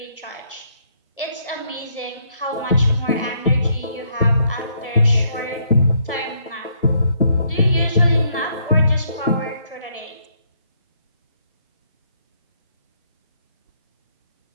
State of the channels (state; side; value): inverted; both; correlation -0.70